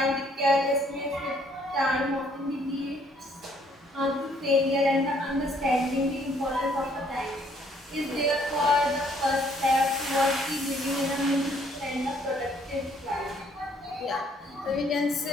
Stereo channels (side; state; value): both; normal; correlation 0.65